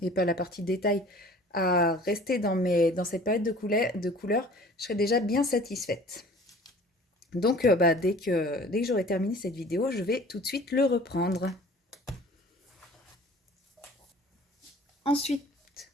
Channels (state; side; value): normal; both; correlation 0.47